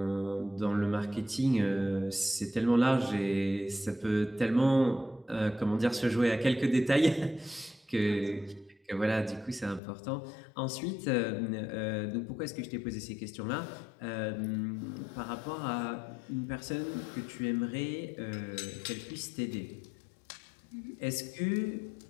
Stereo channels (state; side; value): drops out; right; at 9.8 s